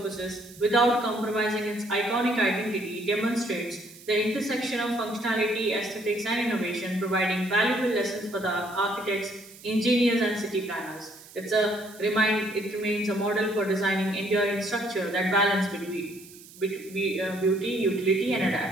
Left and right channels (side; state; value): right; noise; hiss, 20 dB below the sound